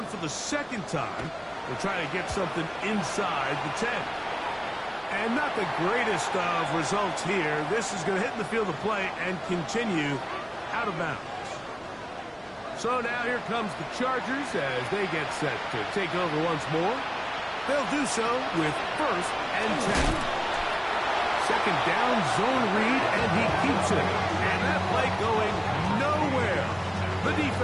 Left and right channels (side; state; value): both; identical; correlation 1.00